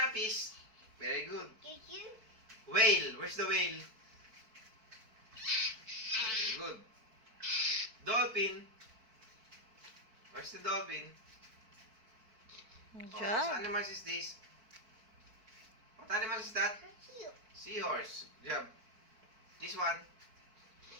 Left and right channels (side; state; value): left; late; 4.5 ms